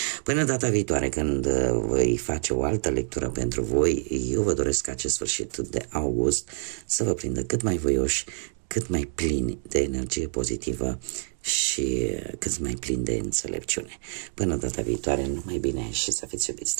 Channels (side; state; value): left; silent; 60 dB below the other